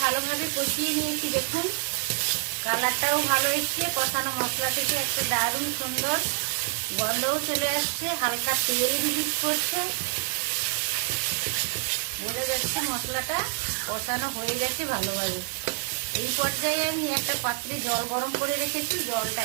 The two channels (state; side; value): quieter; left; 35.4 dB